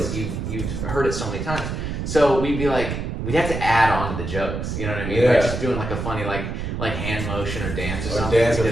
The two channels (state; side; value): noise; right; rumble, 4 dB below the sound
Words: you've heard it so many times. So we'd be like, we'd have to add on to the jokes, you know what I mean? Yeah. Like just doing like a funny like hand motion or dance or something. Or dance or